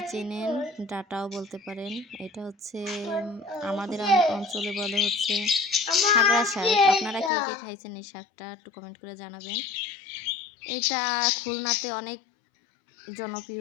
চেনেন, ডাঁটাও বলতে পারেন। এটা হচ্ছে আমাদের অঞ্চলে বলে হচ্ছে হাগড়া শাক। আপনারা কে কে খাইছেন এই শাকটা একটু কমেন্ট করে জানাবেন। এটা খুলনাতে অনেক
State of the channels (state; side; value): drops out; right; at 7.3 s